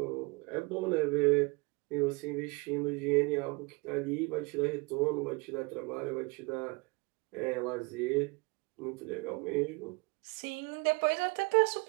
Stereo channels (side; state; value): left; quieter; 27.6 dB